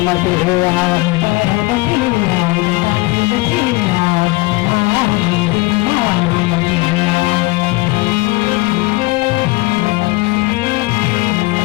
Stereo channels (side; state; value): right; quieter; 23.2 dB